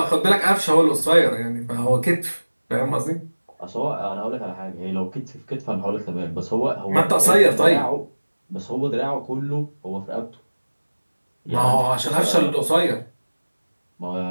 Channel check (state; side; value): inverted; both; correlation -1.00